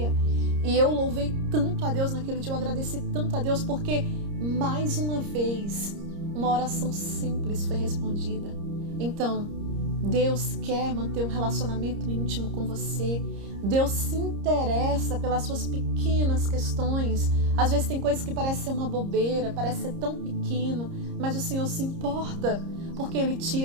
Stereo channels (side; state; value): left; late; 30 ms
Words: E eu louvei tanto a Deus naquele dia, eu agradeci tanto a Deus, porque mais uma vez uma oração simples foi respondida. Então, Deus quer manter um relacionamento íntimo com você. Deus se interessa pelas suas pequenas questões. Às vezes tem coisas que parecem ser uma bobeira, parece ser tão pequeno, mas o Senhor se importa, porque Ele te